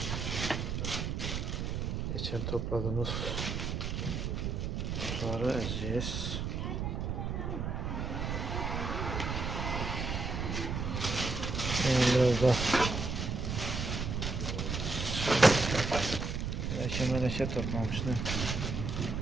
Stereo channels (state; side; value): noise; right; rumble, 2 dB below the sound